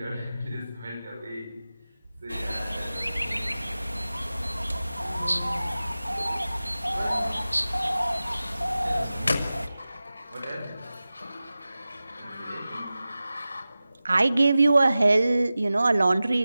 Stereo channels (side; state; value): both; inverted; correlation -0.96